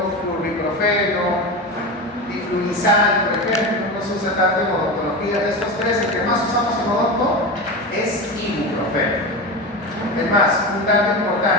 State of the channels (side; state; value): both; normal; correlation 0.23